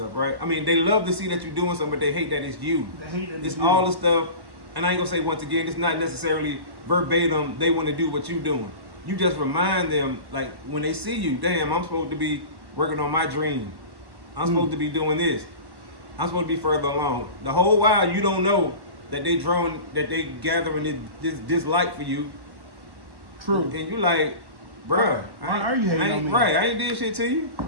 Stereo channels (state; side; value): late; left; 1.1 ms